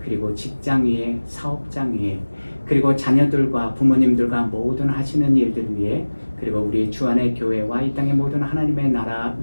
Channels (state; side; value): inverted; both; correlation -1.00